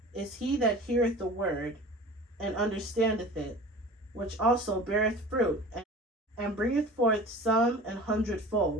is he that heareth the word, and understandeth it, which also beareth fruit, and bringeth forth some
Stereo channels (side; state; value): both; normal; correlation 0.39